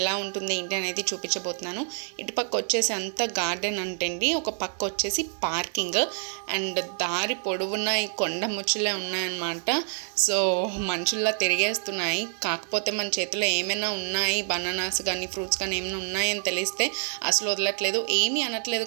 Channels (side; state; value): left; silent; digital silence